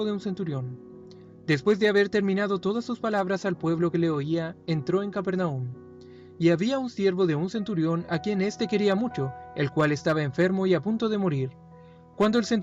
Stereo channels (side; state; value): both; identical; correlation 1.00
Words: de un centurión. Después de haber terminado todas sus palabras al pueblo que le oía, entró en Capernaum. Y había un siervo de un centurión a quien éste quería mucho, el cual estaba enfermo y a punto de morir. Cuando el